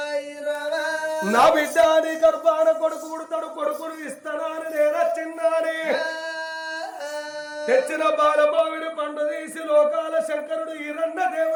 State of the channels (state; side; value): identical; both; correlation 1.00